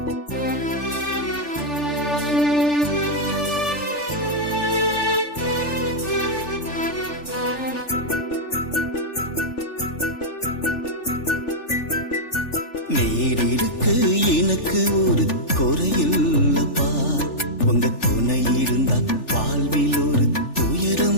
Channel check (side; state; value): right; late; 3.4 ms